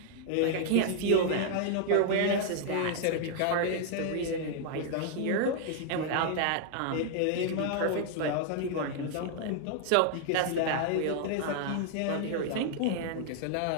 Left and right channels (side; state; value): both; different; correlation -0.01